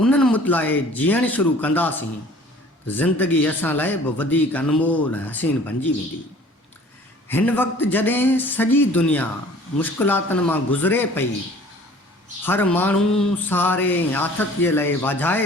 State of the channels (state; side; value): normal; both; correlation 0.50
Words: मुतलाए जीअणु शुरू कंदासीं, ज़िंदगी असां लाइ बि वधीक अनमोल ऐं हसीन बणिजी वेंदी। हिन वक़्तु जॾहिं सॼी दुनिया मुश्किलातुनि मां गुज़रे पई, हर माण्हू सहारे ऐं आथतीअ लाइ वाझाए